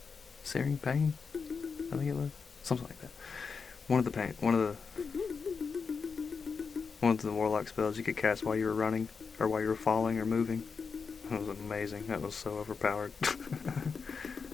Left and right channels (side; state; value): right; quieter; 5.3 dB